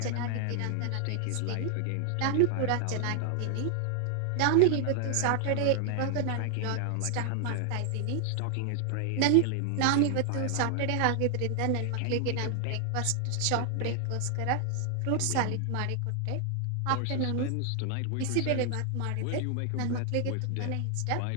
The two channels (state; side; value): different; both; correlation 0.00